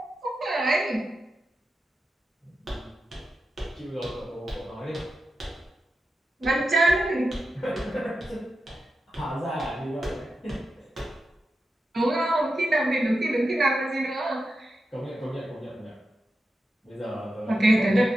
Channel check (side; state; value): both; normal; correlation 0.90